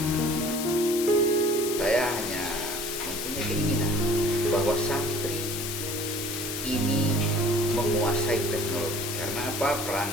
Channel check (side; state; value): left; noise; hiss, 5 dB below the sound